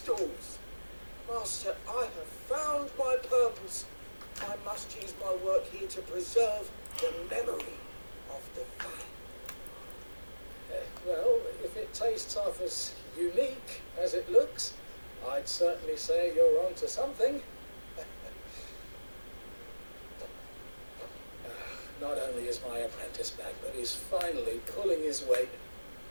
Master, I have found my purpose. I must use my work here to preserve the memory of the Fang. Well, if it tastes half as unique as it looks, I'd certainly say you're onto something. Not only is my apprentice back, but he's finally pulling his weight.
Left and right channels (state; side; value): inverted; both; correlation -1.00